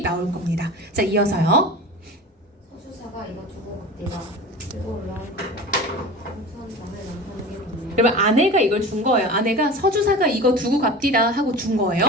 나올 겁니다. 자, 이어서요. 서주사가 이거 두고 내가 들고 올라온 공천장을 남편에게 보내요. 여러분 아내가 이걸 준 거예요. 아내가 서주사가 이거 두고 갑디다 하고 준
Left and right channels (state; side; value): normal; both; correlation 0.34